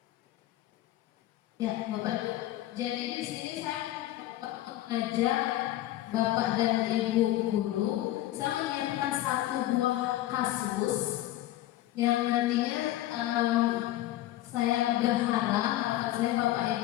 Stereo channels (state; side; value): quieter; right; 14.8 dB